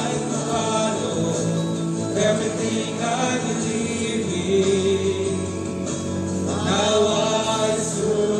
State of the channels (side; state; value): both; identical; correlation 1.00